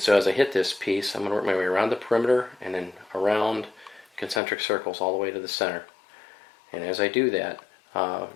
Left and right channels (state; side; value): drops out; right; at 4.4 s